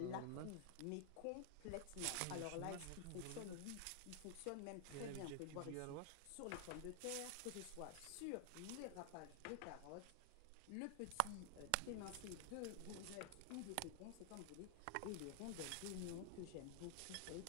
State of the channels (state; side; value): different; both; correlation 0.00